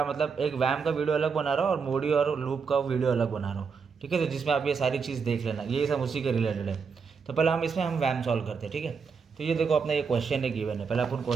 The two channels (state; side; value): quieter; left; 5.6 dB